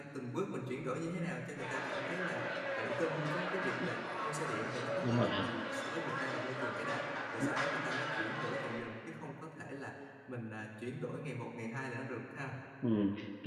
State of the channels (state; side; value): identical; both; correlation 1.00